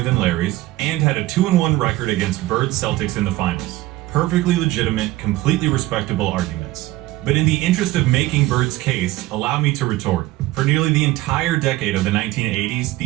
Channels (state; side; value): quieter; left; 17.5 dB